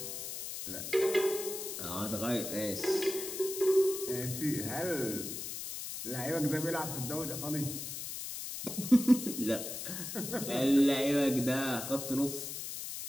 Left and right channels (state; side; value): noise; left; hiss, 6 dB below the sound